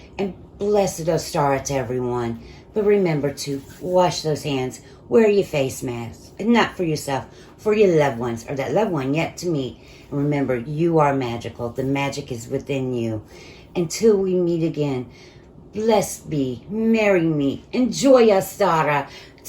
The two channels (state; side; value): identical; both; correlation 1.00